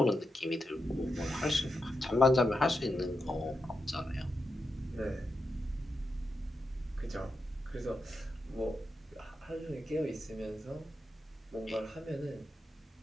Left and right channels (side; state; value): both; normal; correlation 0.87